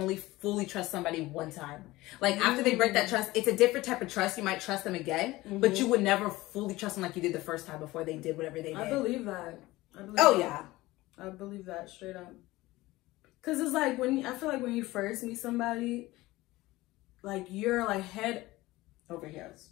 fully trust somebody one time. Like, after they break that trust, it's a different type of trust. You might trust them again, but you would never fully trust them like you did the first time before they did whatever they did. I believe that. Yeah. I believe that straight up. Because it's like, I feel like when you first meet somebody, like, you're like head over heels.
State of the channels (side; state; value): right; quieter; 18.9 dB